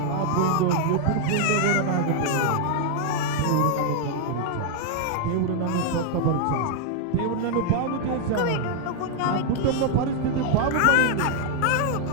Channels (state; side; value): different; both; correlation 0.00